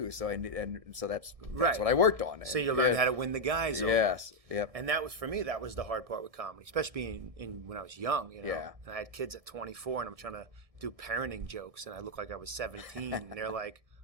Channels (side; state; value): left; late; 1.7 ms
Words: so that's what I worked on. So you learned how to win the guys over. Yes. Yep. And that was for me. That was the hard part with comedy, especially when I was young. Yeah. And I had kids at 24, and I'm trying to do parenting jokes, and I look like I was 17, and they're like,